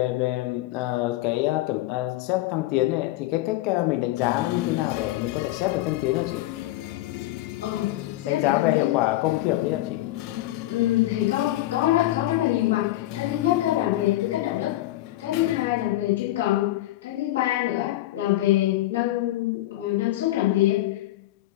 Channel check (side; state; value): right; quieter; 16.0 dB